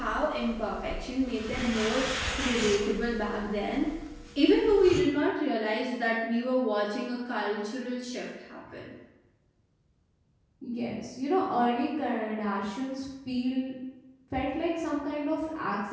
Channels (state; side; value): identical; both; correlation 1.00